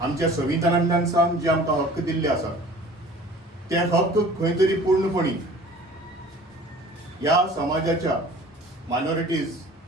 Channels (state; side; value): normal; both; correlation 0.47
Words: आमच्या संविधानांतल्यान सांग जे आमकां हक्क दिल्ले आसात ते हक्क खंय तरी पूर्णपणी ह्या समाजाच्या मायनॉरिटीज